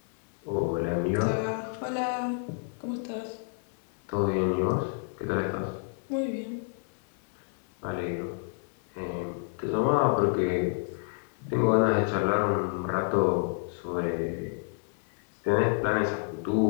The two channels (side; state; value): right; silent; 58 dB below the other